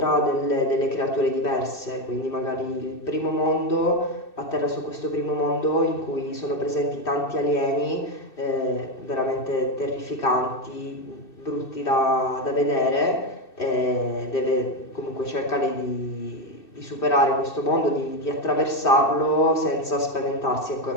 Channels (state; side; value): late; right; 2.6 ms